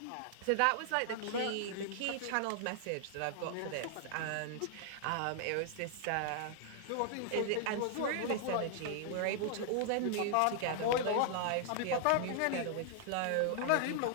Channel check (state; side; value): different; both; correlation 0.00